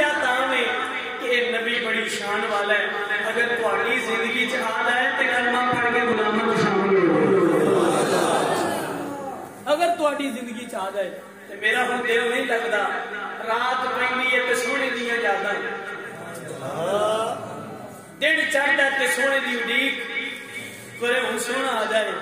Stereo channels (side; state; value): both; identical; correlation 1.00